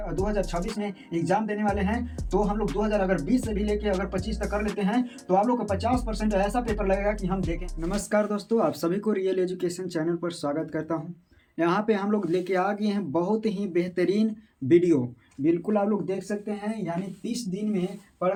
2026 में एग्जाम देने वाले हैं तो हम लोग 2020 से भी लेके अगर 25 तक कर लेते हैं तो आप लोग को 50% ऐसा पेपर लगेगा कि हम देखें। नमस्कार दोस्तों, आप सभी को रियल एजुकेशन चैनल पर स्वागत करता हूँ। यहाँ पे हम लोग लेके आ गए हैं बहुत ही बेहतरीन वीडियो, बिल्कुल आप लोग देख सकते हैं। यानी 30 दिन में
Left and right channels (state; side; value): identical; both; correlation 1.00